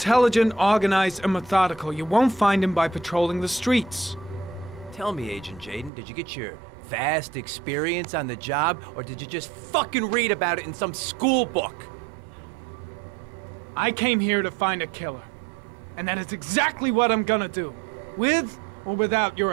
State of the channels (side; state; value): left; drops out; at 5.9 s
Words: organized, and methodical. You won't find him by patrolling the streets. Tell me, Agent Jayden, did you get your vast experience on the job, or did you just fucking read about it in some school book? I came here to find a killer. And that is exactly what I'm gonna do. With or without your